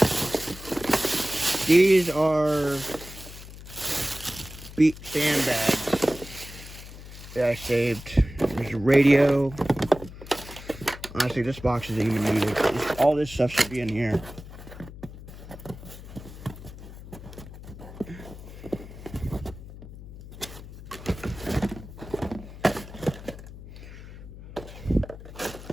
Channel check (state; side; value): noise; left; hum, 14 dB below the sound